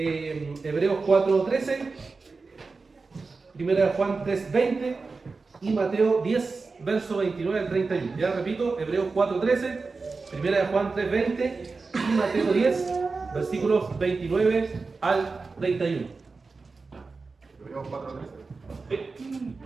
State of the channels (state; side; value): quieter; left; 4.2 dB